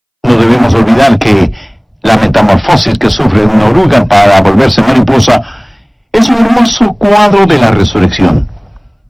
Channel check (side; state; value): both; identical; correlation 1.00